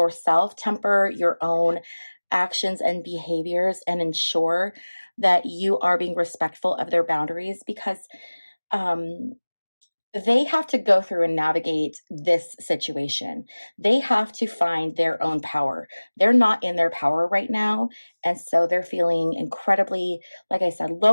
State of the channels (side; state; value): both; inverted; correlation -1.00